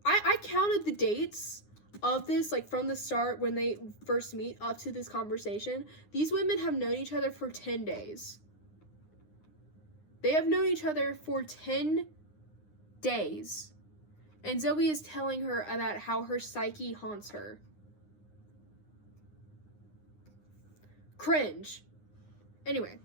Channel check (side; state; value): right; late; 9.7 ms